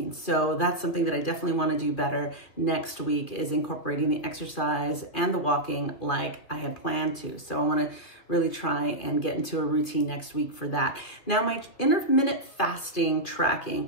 So that's something that I definitely want to do better next week, is incorporating the exercise and the walking like I had planned to. So I want to really try and get into a routine next week for that. Now, my intermittent fasting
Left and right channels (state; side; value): late; right; 2.6 ms